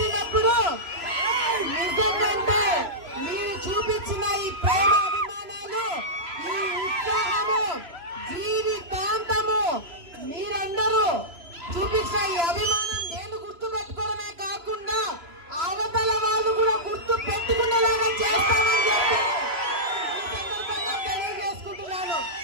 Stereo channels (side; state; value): left; late; 3.0 ms